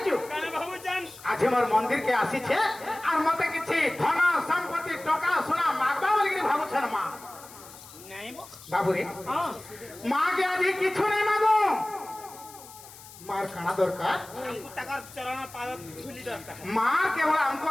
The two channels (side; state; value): left; noise; hiss, 18 dB below the sound